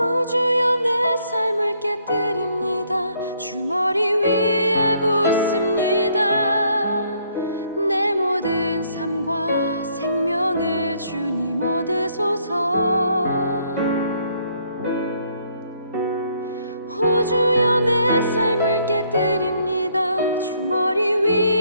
주여, 내 삶을 깨뜨립니다. 주 머리 위에 붓습니다. 내 모든 삶과 생명을 주님 얻으소서. 오 주여, 내 삶을 깨뜨립니다. 주 머리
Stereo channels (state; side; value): inverted; both; correlation -0.68